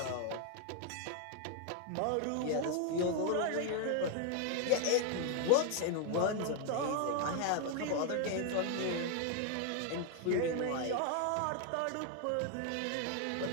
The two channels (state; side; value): different; both; correlation 0.00